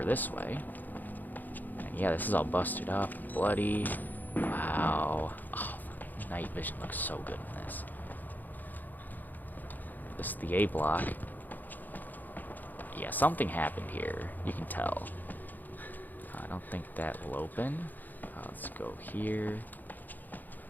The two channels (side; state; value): right; late; 0.085 ms